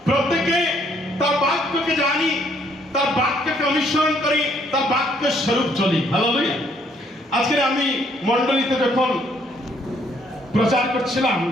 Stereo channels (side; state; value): both; normal; correlation 0.67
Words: প্রত্যেকে তার বাক্যকে জানি, তার বাক্যকে অনুসরণ করি, তার বাক্য স্বরূপ চলি। হালেলুয়া। আজকে আমি মণ্ডলীতে যখন প্রচার করছিলাম,